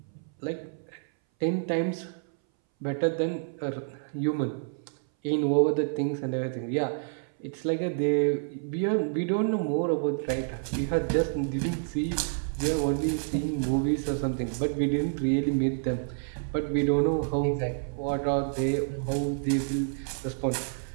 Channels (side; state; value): left; silent; 59 dB below the other